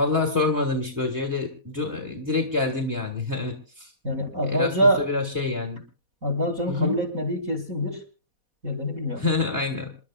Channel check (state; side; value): late; left; 4.1 ms